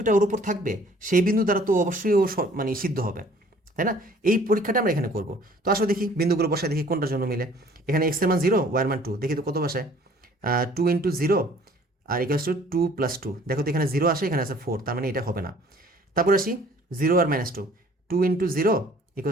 ওর উপর থাকবে সেই বিন্দু দ্বারা তো অবশ্যই ও মানে সিদ্ধ হবে, তাই না? এই পরীক্ষাটা আমরা এখানে করব। তো আসলে দেখি বিন্দুগুলো বসায়, দেখি কোনটার জন্য মিলে। এখানে এক্স এর মান 0, ওয়াই এর মান 2, দেখি তো কত বসায়, 2 ইন্টু 0 আর ইকুয়ালস টু 2 প্লাস 2। দেখো তো এখানে 0 আসে, এখানে আছে 4, তার মানে এটা হবে না। তারপর আসি 0 আর -2, 2 ইন্টু 0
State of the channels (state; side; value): normal; both; correlation 0.54